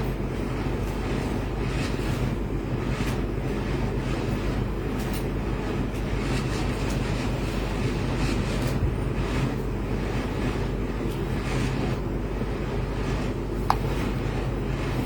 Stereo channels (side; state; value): both; identical; correlation 1.00